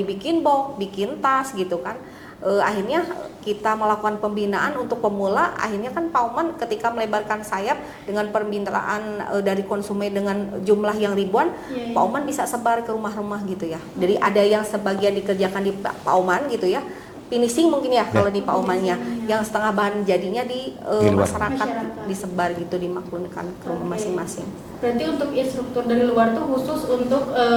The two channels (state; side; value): identical; both; correlation 1.00